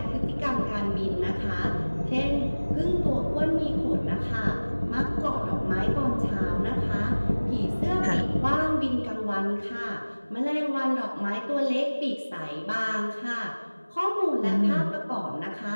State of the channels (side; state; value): both; inverted; correlation -1.00